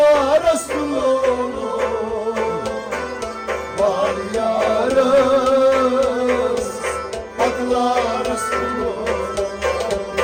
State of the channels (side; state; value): both; identical; correlation 1.00